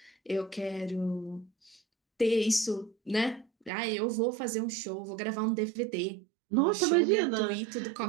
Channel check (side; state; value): left; drops out; at 3.7 s